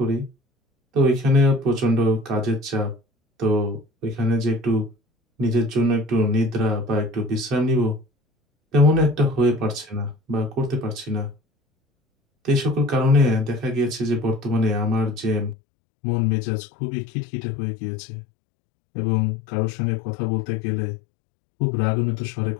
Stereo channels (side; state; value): right; drops out; at 15.6 s